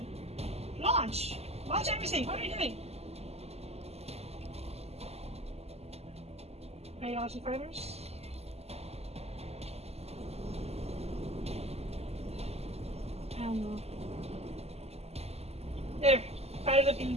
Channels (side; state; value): left; late; 0.30 ms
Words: Launch! Launch everything! What are you doing? Are you launching fighters? I don't know. There! Fighters are being